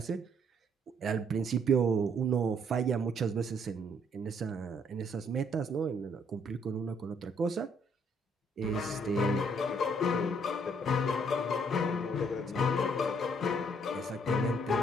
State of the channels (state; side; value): normal; both; correlation 0.67